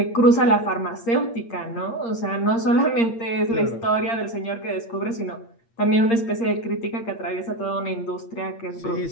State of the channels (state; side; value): late; right; 8.7 ms